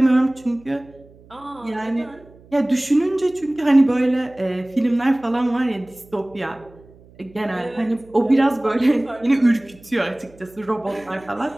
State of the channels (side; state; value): right; noise; hum, 25 dB below the sound